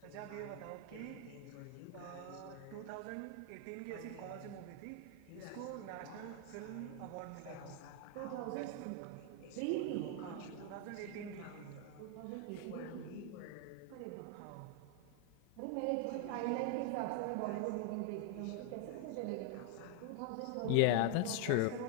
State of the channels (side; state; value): both; different; correlation 0.00